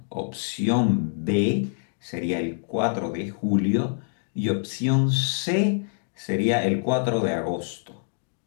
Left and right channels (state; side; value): silent; right; digital silence